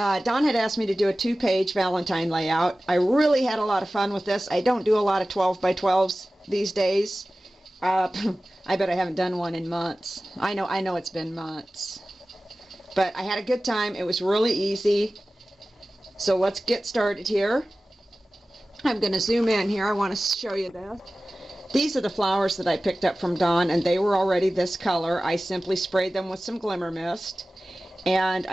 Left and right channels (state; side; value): normal; both; correlation 0.96